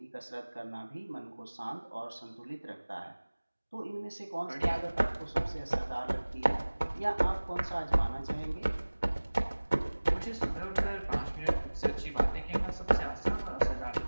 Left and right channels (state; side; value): inverted; both; correlation -1.00